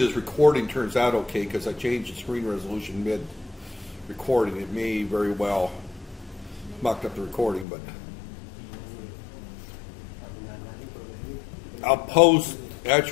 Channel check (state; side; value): drops out; right; at 7.7 s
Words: recording turns out okay, because I changed the screen resolution mid-recording. It may very well mucked up the recording, but I'll post,